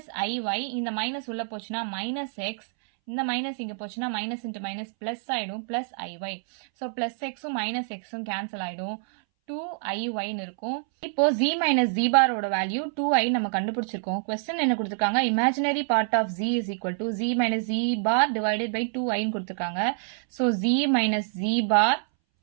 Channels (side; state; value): left; silent; 60 dB below the other